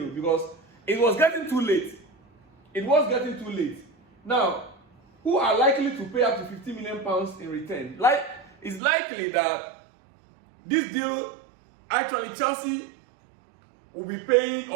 because it was getting too late. It was getting too late. Now, who are likely to pay up to £50 million in return? It's likely that this deal, actually Chelsea will be paying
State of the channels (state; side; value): drops out; left; at 8.8 s